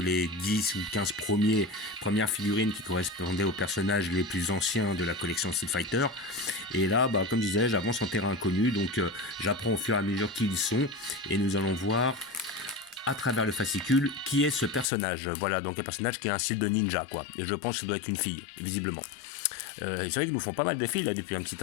10 ou 15 premières figurines qui correspondaient aux personnages les plus anciens de la collection Street Fighter, et là bah, comme je disais j'avance en terrain inconnu, donc j'apprends au fur et à mesure qui ils sont, et nous allons voir à travers le fascicule qui est ce personnage. Voilà, donc un personnage qui a un style de ninja quoi, et je pense que ça doit être une fille, visiblement. C'est vrai qu'ils nous font pas mal de filles là depuis un petit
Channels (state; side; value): drops out; right; at 14.9 s